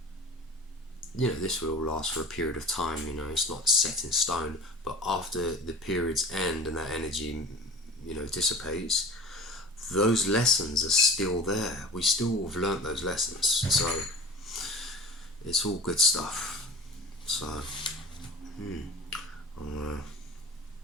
This will last for a period of time. It's not set in stone, but after the period's end and that energy dissipates, those lessons are still there. We still have learnt those lessons, so it's all good stuff. So I'll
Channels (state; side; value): normal; both; correlation 0.37